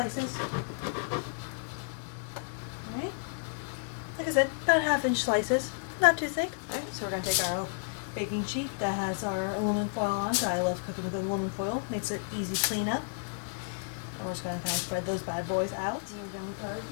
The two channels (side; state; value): right; silent; digital silence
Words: Alright. Like I said, about 1/2-inch slices. Not too thick. Alright, so we're going to take our baking sheet that has our aluminum foil on. So I love cooking with aluminum foil. Makes it easy cleanup. We're just going to kind of spread those bad boys out. We're done with our